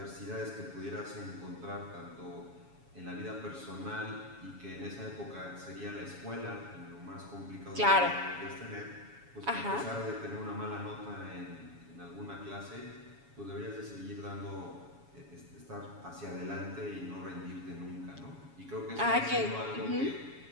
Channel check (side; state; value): left; late; 7.2 ms